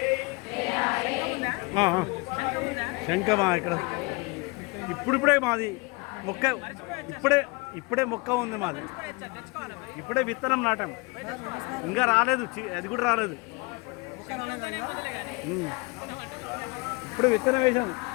శంఖమా ఇక్కడ ఇప్పుడిప్పుడే మాది మొక్క ఇప్పుడే మొక్క ఉంది మాది. ఇప్పుడే విత్తనం నాటాం, ఇంకా రాలేదు, అది కూడా రాలేదు. ఇప్పుడు విత్తనం వేసాను.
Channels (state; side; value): quieter; right; 27.8 dB